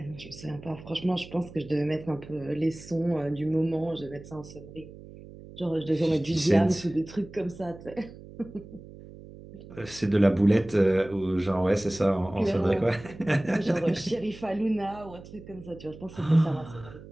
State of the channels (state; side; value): noise; right; hum, 17 dB below the sound